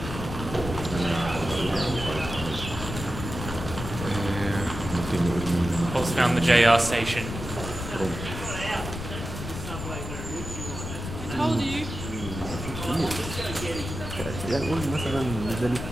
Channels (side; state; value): left; noise; rumble, 7 dB below the sound